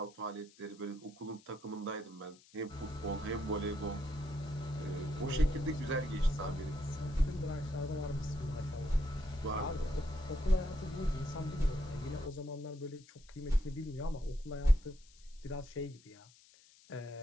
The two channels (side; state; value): left; noise; hiss, 25 dB below the sound